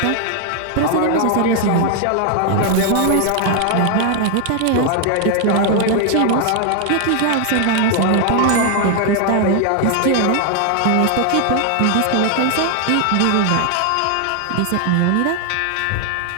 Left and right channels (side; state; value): both; different; correlation 0.00